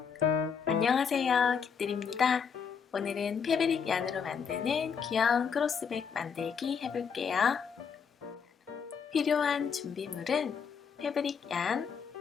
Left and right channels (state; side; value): quieter; right; 6.6 dB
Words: 안녕하세요, 깃들입니다. 오늘은 패브릭 얀으로 만드는 귀여운 크로스백 만들기 해볼게요. 필요한 준비물은 패브릭 얀,